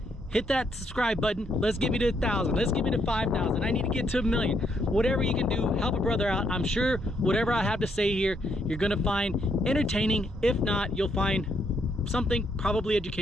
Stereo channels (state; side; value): normal; both; correlation 0.74